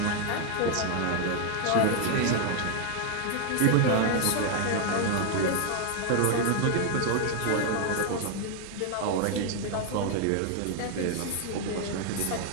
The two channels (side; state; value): both; different; correlation 0.00